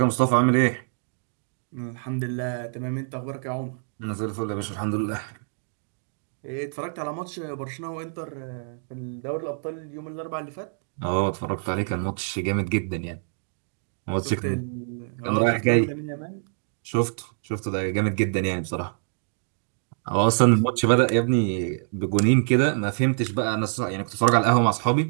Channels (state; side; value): silent; left; digital silence